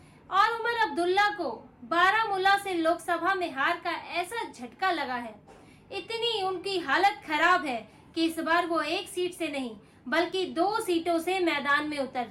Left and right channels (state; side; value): identical; both; correlation 1.00